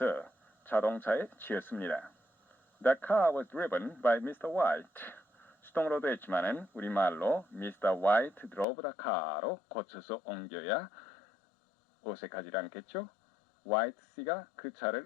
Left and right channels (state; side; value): drops out; right; at 8.7 s